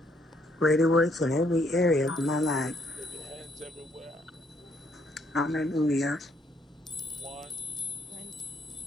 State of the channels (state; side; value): normal; both; correlation 0.70